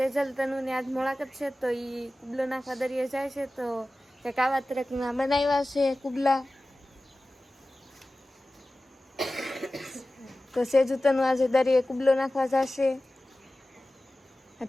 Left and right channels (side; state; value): both; normal; correlation 0.96